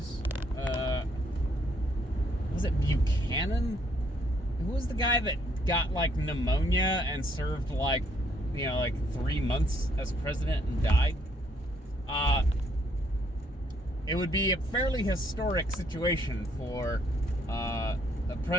it Buchanan? Who was the guy that got like pneumonia and served like 3 months as president and died? It would be a fairly historic situation for a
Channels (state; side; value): normal; both; correlation 0.69